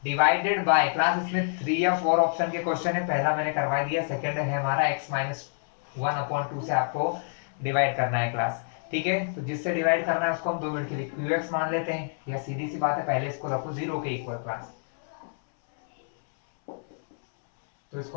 divided by, class इसमें 3 या 4 ऑप्शन के क्वेश्चन है। पहला मैंने करवा दिया, सेकंड है हमारा x - 1/2 से आपको डिवाइड करना है क्लास। ठीक है, तो जिससे डिवाइड करना है उसको हम 2 मिनट के लिए qx मान लेते हैं, या सीधी सी बात है पहले इसको रखो 0 के इक्वल क्लास। तो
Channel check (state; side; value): silent; right; 60 dB below the other